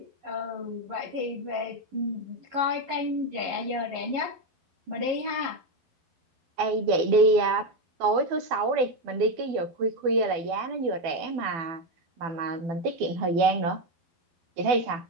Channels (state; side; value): late; left; 12 ms